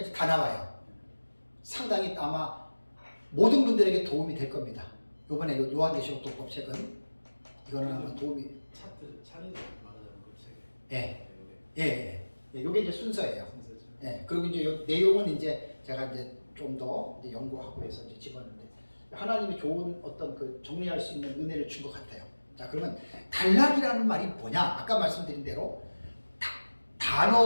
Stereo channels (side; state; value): both; inverted; correlation -1.00